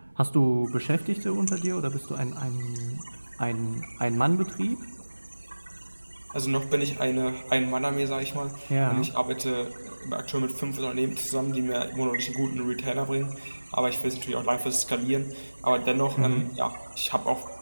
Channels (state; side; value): inverted; both; correlation -1.00